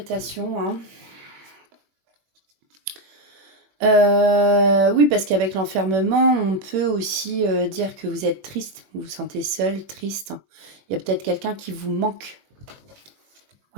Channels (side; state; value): left; late; 21 ms